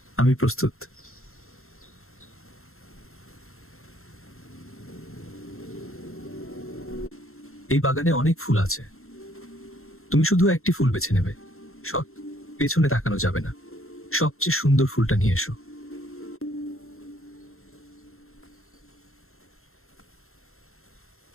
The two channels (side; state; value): right; late; 0.62 ms